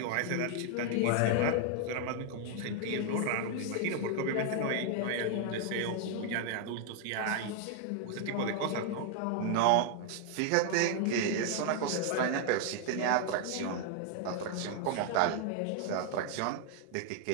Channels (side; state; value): both; different; correlation 0.00